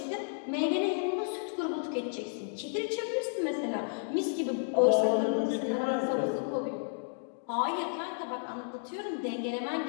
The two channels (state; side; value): silent; right; digital silence